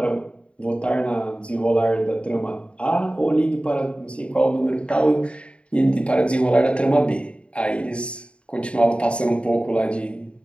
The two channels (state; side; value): late; right; 0.059 ms